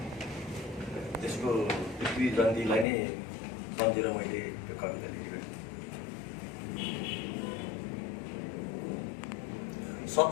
त्यसको पृथ्वी जयन्तीलाई नै सम्झेर मैले यो कविता लेखेको।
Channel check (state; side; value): drops out; right; at 2.9 s